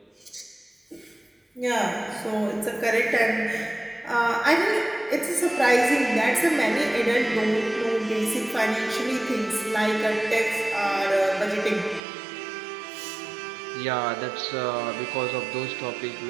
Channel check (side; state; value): left; drops out; at 12.0 s